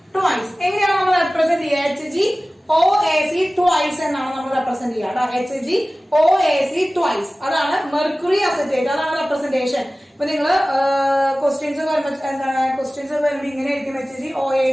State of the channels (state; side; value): normal; both; correlation 0.97